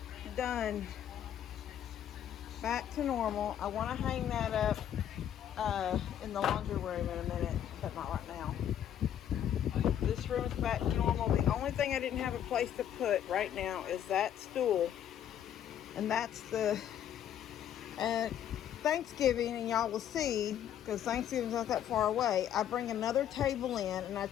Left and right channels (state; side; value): quieter; right; 10.2 dB